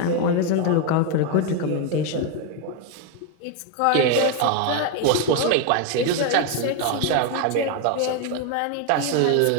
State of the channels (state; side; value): different; both; correlation 0.01